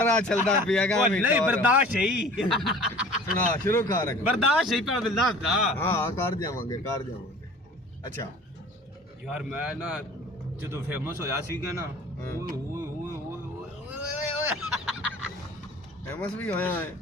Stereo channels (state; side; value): normal; both; correlation 0.45